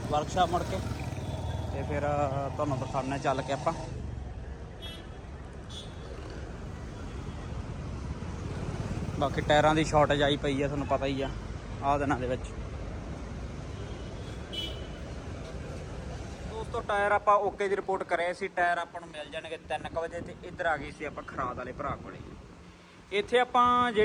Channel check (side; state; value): both; identical; correlation 1.00